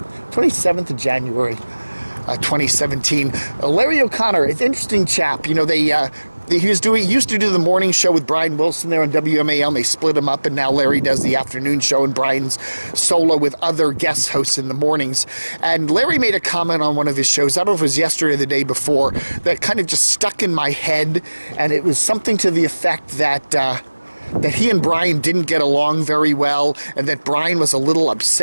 27th of January, 2017. Larry O'Connor, it's an interesting chap. You know, he used to do the morning show with Brian Wilson there on WMAL, and they split him up, and now Larry does the afternoon show, and Brian's solo with other guest hosts in the mornings. And Larry made a comment on one of his shows, I don't know if it was yesterday or the day before, that kind of just stuck in my head, and it was something to the effect that he and Brian didn't get along very well, and that Brian was a little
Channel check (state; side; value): inverted; both; correlation -1.00